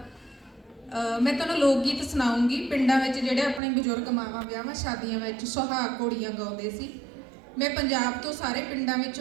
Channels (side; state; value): left; drops out; at 3.6 s